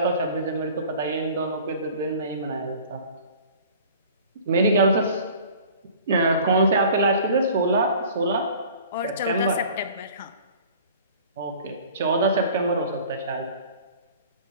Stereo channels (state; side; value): inverted; both; correlation -0.46